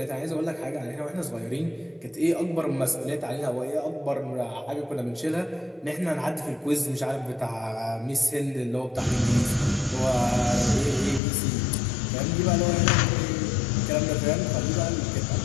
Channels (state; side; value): drops out; right; at 11.2 s